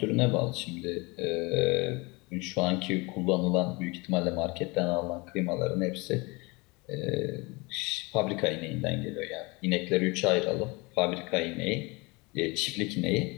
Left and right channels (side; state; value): right; quieter; 26.1 dB